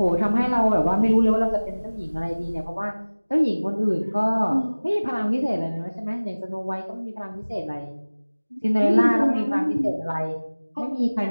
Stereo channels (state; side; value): inverted; both; correlation -1.00